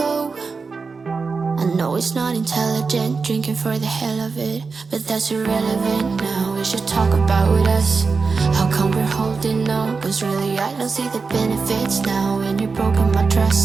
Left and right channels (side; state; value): left; quieter; 4.6 dB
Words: I know it's not intelligent, drinking for the hell of it, but that's irrelevant now. We should talk about us. How come we're holding on? Cause really I don't see the benefits now. And you've broken my